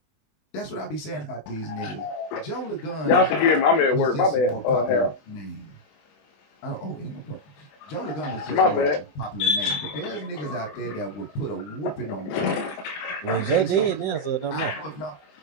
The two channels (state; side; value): late; right; 20 ms